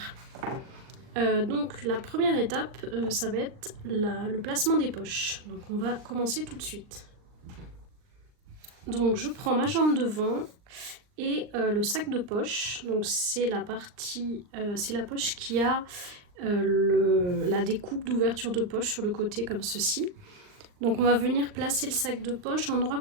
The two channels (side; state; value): left; late; 39 ms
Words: Donc la première étape, ça va être le placement des poches. Donc on va commencer tout de suite. Donc je prends ma jambe devant et le sac de poche. Donc c'est la partie, c'est la poche qui a la découpe d'ouverture de poche sur le côté comme ceci. Donc on va venir placer le sac de poche endroit